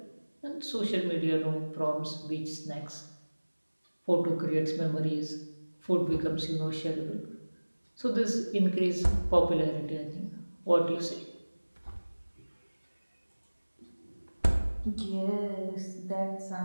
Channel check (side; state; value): both; inverted; correlation -1.00